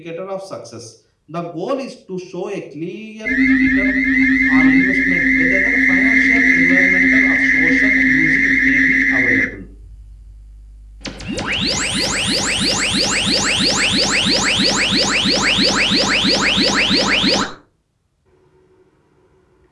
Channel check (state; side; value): identical; both; correlation 1.00